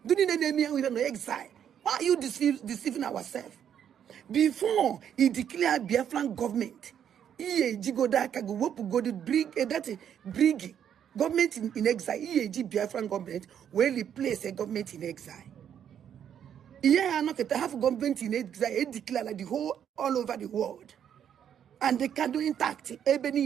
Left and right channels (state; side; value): quieter; left; 9.1 dB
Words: Do you need me with an exile? Why are you deceiving ourselves? Before he declared Biafran government, bring government in exile. Biafran government will replace a government in exile. Yeah, not to have government in exile. It declared like the whole all over the world, and they can do intact.